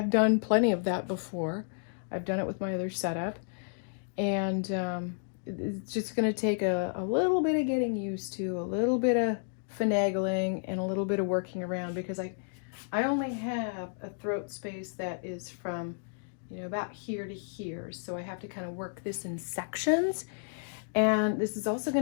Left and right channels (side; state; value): right; silent; digital silence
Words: done plenty of that before. I've done it with my other setup, and it's just going to take a little bit of getting used to, a little bit of finagling, and a little bit of working around because I only have a throat space that is from about here to here, so I have to kind of work this in sections. And this is also